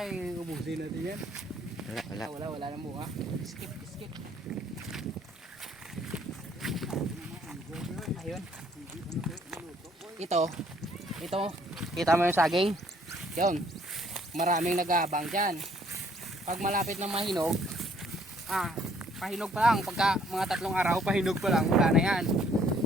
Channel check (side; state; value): both; normal; correlation 0.64